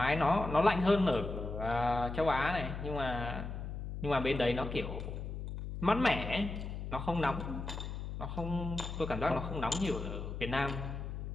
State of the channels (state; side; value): noise; left; hum, 6 dB below the sound